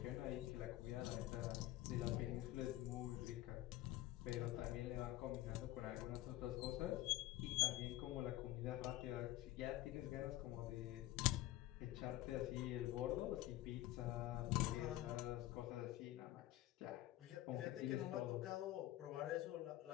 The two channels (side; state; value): right; quieter; 15.7 dB